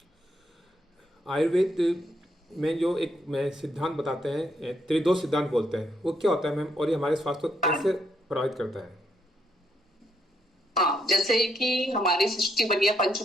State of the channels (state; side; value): normal; both; correlation 0.75